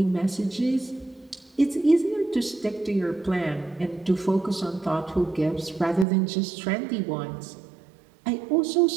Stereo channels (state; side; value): drops out; left; at 6.1 s